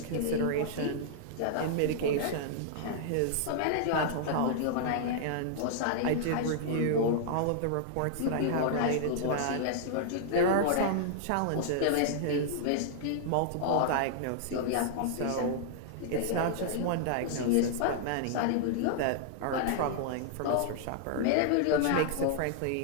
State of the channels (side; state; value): both; different; correlation -0.01